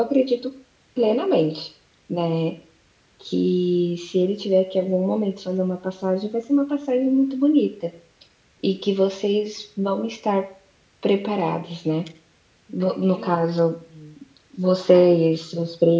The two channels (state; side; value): identical; both; correlation 1.00